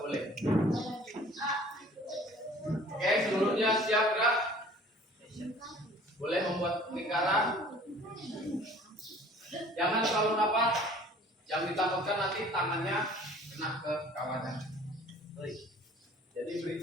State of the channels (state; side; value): normal; both; correlation 0.50